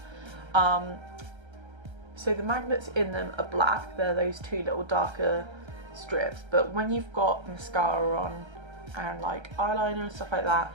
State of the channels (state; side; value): late; left; 1.3 ms